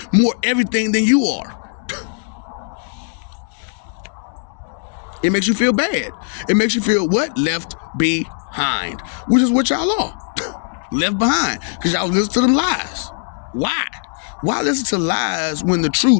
more everything than you are. It makes you feel bad. It makes you feel what? Left behind. Which is what y'all are. Left behind. Because y'all listen to them lies. Why? Why listen to lies when the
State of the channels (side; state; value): right; silent; digital silence